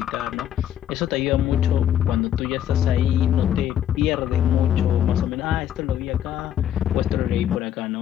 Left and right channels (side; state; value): right; quieter; 10.4 dB